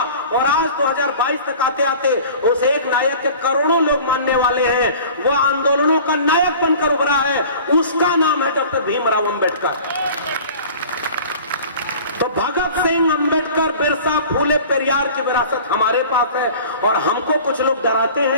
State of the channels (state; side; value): inverted; both; correlation -0.43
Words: और आज 2022 तक आते आते उस एक नायक के करोड़ों लोग मानने वाले हैं। वो आंदोलनों का नायक बनकर उभरा है, उसका नाम है डॉक्टर भीमराव अंबेडकर। तो भगत सिंह, अंबेडकर, बिरसा, फूले, पेरियार की विरासत हमारे पास है और हमको कुछ लोग डराते